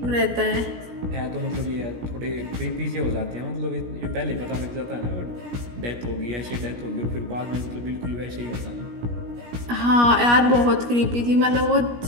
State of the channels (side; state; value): left; late; 17 ms